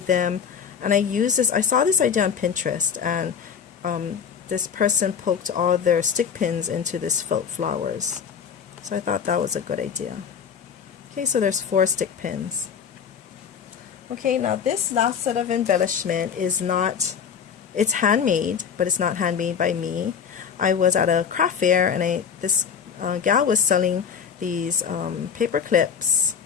them, and I used this. I saw this idea on Pinterest, and this person poked all their stick pins into this felt flowers. So I thought that was a good idea. Okay, so there's 4 stick pins. Okay, now this last set of embellishment is not, it's handmade, but it's not handmade by me. I was at a craft fair, and this gal was selling these paper clips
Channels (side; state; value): right; quieter; 7.2 dB